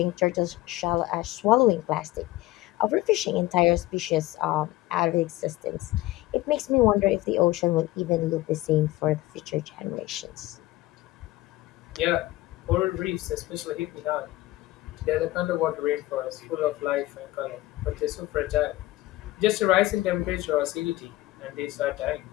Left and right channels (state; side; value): quieter; right; 17.3 dB